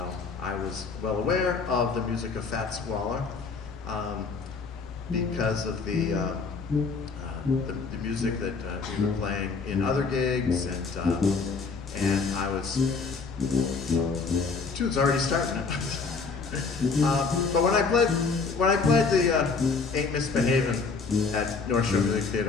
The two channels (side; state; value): right; quieter; 4.6 dB